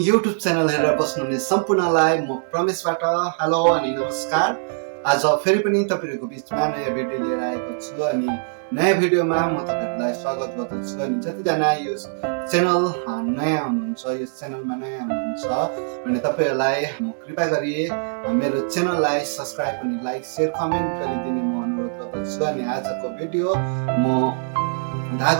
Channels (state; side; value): silent; left; digital silence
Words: YouTube channel हेरेर बस्नुहुने सम्पूर्णलाई म प्रमेशबाट हेलो अनि नमस्कार। आज फेरि पनि तपाईहरुको बीचमा नयाँ भिडियो लिएर आएको छु अनि नयाँ भिडियोमा म तपाईहरुलाई स्वागत गर्दछु। अनि जतिजना यो च्यानल नयाँ हुनुहुन्छ, यो च्यानलमा नयाँ हुनुहुन्छ भने तपाईहरुलाई म कृपया गरी मेरो च्यानललाई सब्स्क्राइब अनि लाइक शेयर कमेन्ट गरिदिने म अनुरोध गर्दछु। अनि आजको भिडियो म